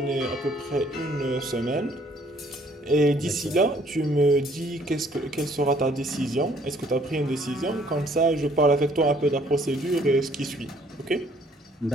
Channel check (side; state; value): both; normal; correlation 0.61